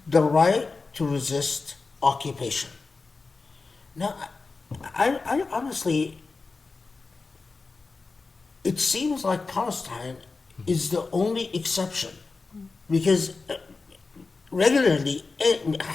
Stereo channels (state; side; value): quieter; right; 4.1 dB